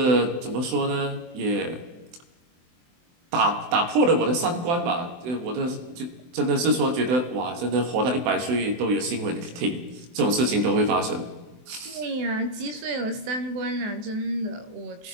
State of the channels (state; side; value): late; left; 23 ms